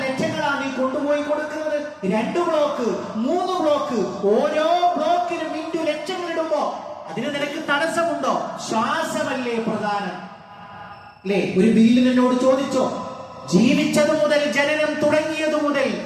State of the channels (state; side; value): identical; both; correlation 1.00